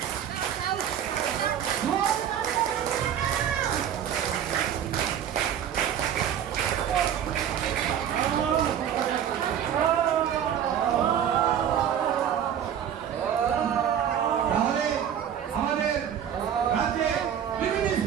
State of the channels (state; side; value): quieter; left; 9.4 dB